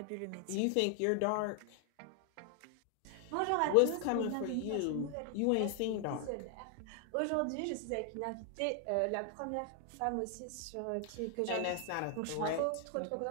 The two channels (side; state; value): both; different; correlation 0.00